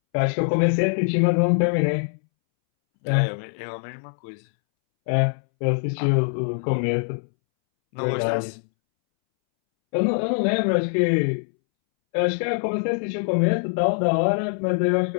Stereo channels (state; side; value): silent; right; 63 dB below the other